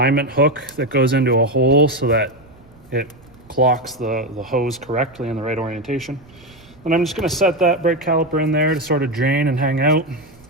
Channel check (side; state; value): right; noise; rumble, 26 dB below the sound